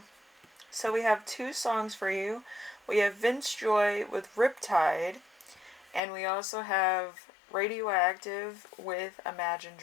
so we have two songs for you. We have Vance Joy with Riptide, and we also have Radioactive with Imagine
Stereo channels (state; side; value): drops out; right; at 6.0 s